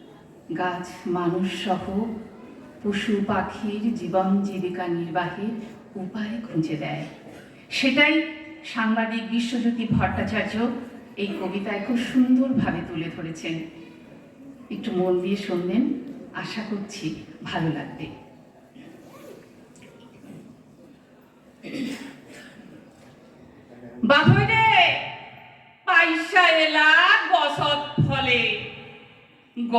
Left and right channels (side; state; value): both; identical; correlation 1.00